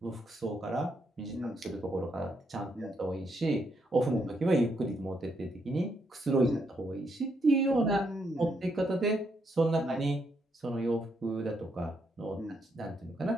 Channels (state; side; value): normal; both; correlation 0.77